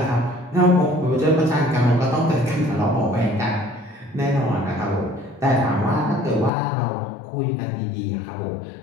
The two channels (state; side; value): drops out; right; at 6.5 s